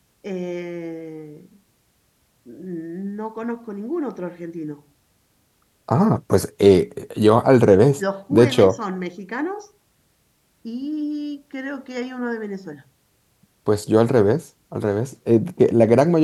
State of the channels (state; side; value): identical; both; correlation 1.00